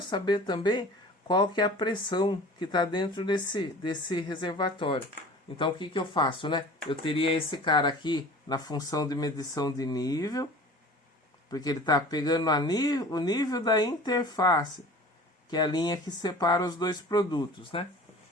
saber também qual que é a pressão que está dentro desse reservatório. Então o que eu faço, né? Eu teria esse cara aqui na função de medição de nível, porque ele está pegando o nível da interface, que é a linha que separa os dois produtos, né?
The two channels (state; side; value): normal; both; correlation 0.42